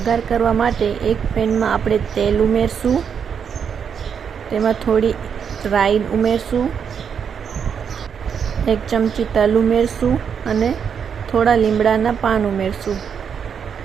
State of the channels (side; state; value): left; quieter; 7.2 dB